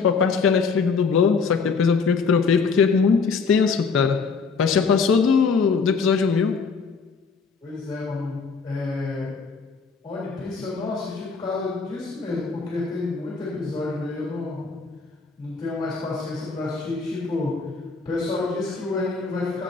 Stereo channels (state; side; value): quieter; right; 5.0 dB